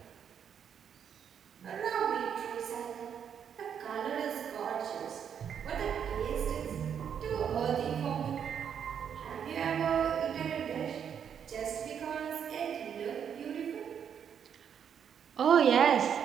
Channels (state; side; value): quieter; left; 8.1 dB